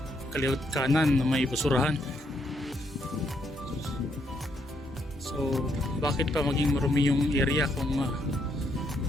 kaliwat kanan na may basurahan. So bakit pa maging marumi yung area kung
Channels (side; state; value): both; normal; correlation 0.75